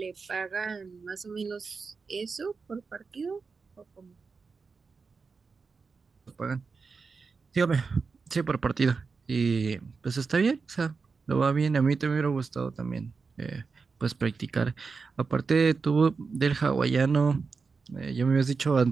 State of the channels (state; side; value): quieter; left; 4.8 dB